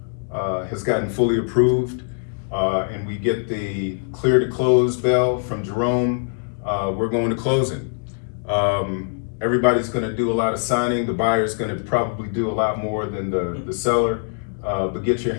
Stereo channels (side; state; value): right; silent; digital silence